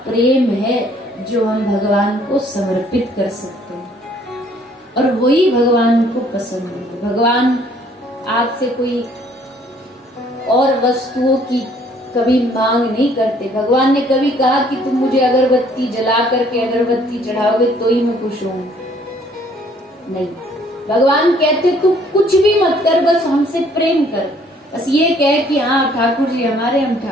प्रेम है जो हम भगवान को समर्पित कर सकते हैं, और वही भगवान को पसंद है। भगवान आपसे कोई और वस्तुओं की कभी मांग नहीं करते। भगवान ने कभी कहा कि तुम मुझे अगरबत्ती जला करके अगरबत्ती चढ़ाओगे तो ही मैं खुश हूं? नहीं। भगवान कहते तू कुछ भी मत कर, बस हमसे प्रेम कर, बस ये कह कि हाँ ठाकुर जी हमारे, हम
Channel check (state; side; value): normal; both; correlation 0.61